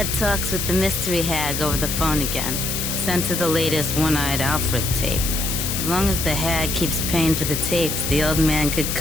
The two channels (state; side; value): noise; left; hiss, 2 dB below the sound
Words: talks with the mystery hag over the phone again. Sent her the latest One-Eyed Alfred tape. As long as the hag keeps paying for the tapes, the old man could